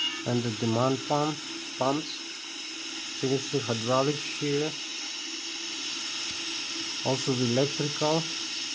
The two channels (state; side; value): identical; both; correlation 1.00